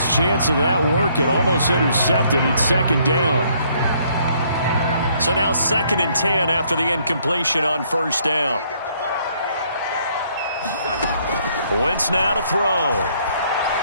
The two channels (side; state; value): both; inverted; correlation -0.66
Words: chance of that working. Almost intercepted. It's 2nd down. So now 2nd and 10 after the incompletion on 1st down. Wentz now to throw.